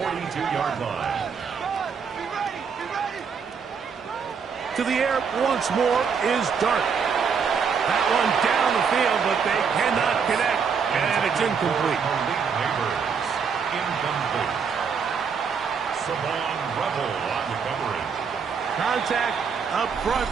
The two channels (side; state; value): left; quieter; 6.2 dB